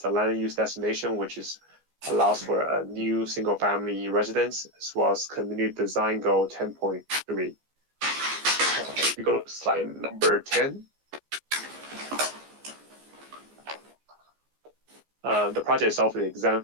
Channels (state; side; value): late; left; 14 ms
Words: land use destination, which is allows for a new single-family residence, as well as community design goal 10.3. We go to slide number 10. The project itself is